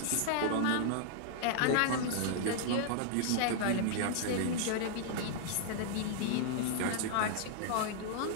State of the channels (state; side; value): different; both; correlation -0.01